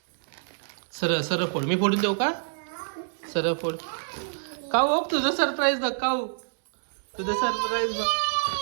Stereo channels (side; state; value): left; silent; 60 dB below the other